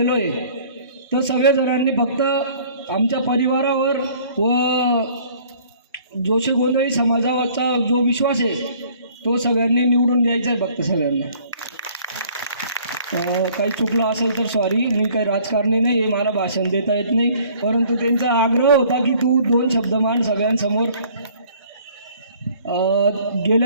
आहे। तर सगळे जणांनी फक्त आमच्या परिवारावर व जोशी गोंधळी समाजाचा जो विश्वास आहे तो सगळ्यांनी निवडून द्यायचा आहे फक्त सगळ्यांना. काही चुकलं असेल तर सॉरी, मी काही राजकारणी नाही आहे, मला भाषण देता येत नाही, परंतु त्यांचा आग्रह होता की तू 2 शब्द मान सगळ्यांसमोर.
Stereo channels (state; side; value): inverted; both; correlation -0.55